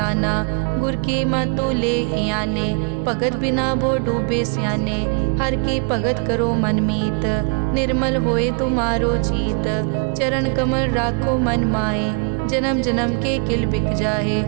गुर की मतु ले याने। भगत बिना वो डूबे स्याने, हर की भगत करो मन मीत। निर्मल होए तुम्हारो चीत, चरण कमल राखो मन माए। जन्म जन्म के किल बिक जाहे,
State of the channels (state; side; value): quieter; left; 38.8 dB